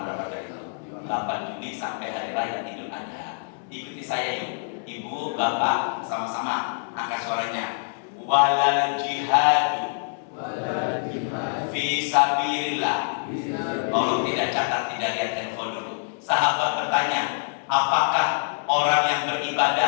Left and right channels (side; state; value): right; silent; 61 dB below the other